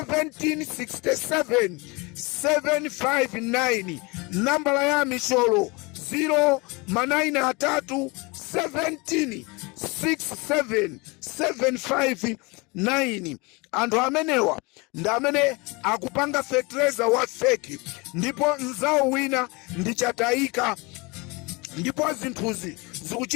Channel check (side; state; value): right; quieter; 26.7 dB